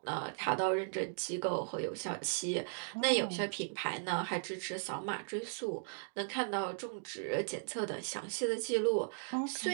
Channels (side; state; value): left; silent; digital silence